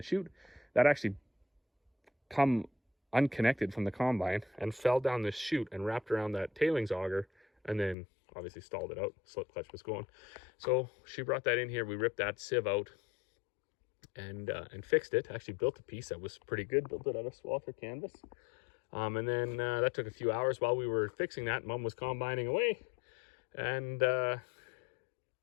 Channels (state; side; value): drops out; right; at 8.0 s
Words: chute. That actually come unconnected from the combine and fell down this chute and wrapped around that tailings auger, and then obviously stalled it out. Slip clutch was going. So she brought that in here. We ripped that sieve out, and fixed it. Actually built a piece that was pretty good, built it out of Swather canvas. And then that took a few hours while we were fixing that. Mom was combining away, and